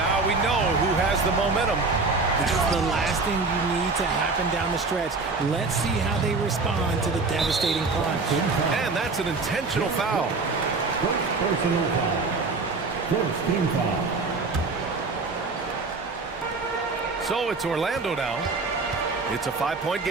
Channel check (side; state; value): left; quieter; 3.9 dB